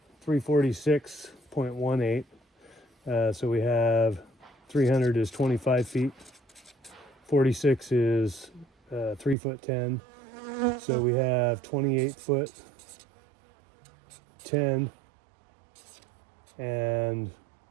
346.18. So we have 300 is 25 feet. 46 is 3 foot 10. So we have 28 foot 10 and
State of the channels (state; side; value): drops out; left; at 9.3 s